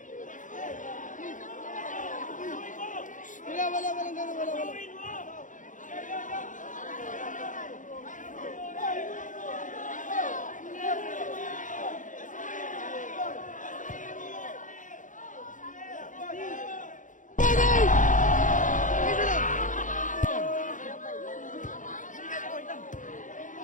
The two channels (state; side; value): late; right; 0.37 ms